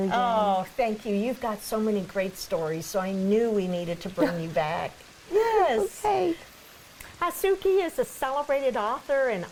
again. Oh, thank you. You've got so many great stories, so I knew we needed to bring you back. Yes. Okay. Hatsuki is a celebrated author and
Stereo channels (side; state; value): both; identical; correlation 1.00